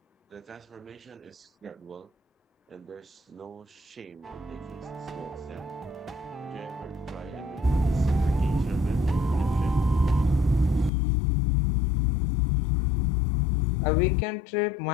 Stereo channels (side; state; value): right; drops out; at 10.9 s